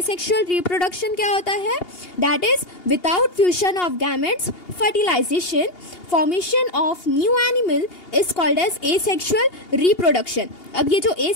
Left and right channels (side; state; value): right; late; 2.8 ms